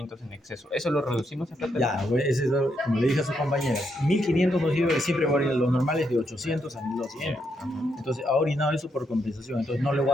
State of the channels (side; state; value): both; normal; correlation 0.79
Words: en exceso. ¿Eso lo reducimos a plata? Ya, güey, ese es, como le dije a sus compañeros, 1500 nos sirve, siempre va a orinar los normales de 800 a 1200. Entonces ha orinado eso por compensación. Entonces no le voy